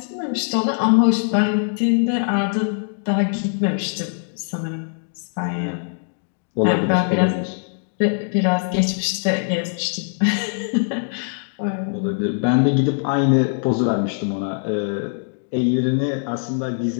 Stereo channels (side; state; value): right; silent; digital silence